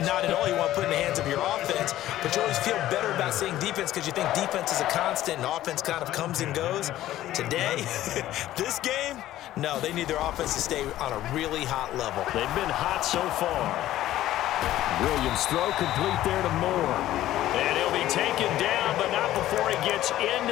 Not at all. You want to put it in the hands of your offense, but you always feel better about saying defense because you think defense is a constant and offense kind of comes and goes. Today, this game, no, they need their offense to stay on a really hot level. They've been hot so far. Williams throw complete there to Moore. And he'll be taken down, but not before he gets into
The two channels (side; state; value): right; quieter; 14.0 dB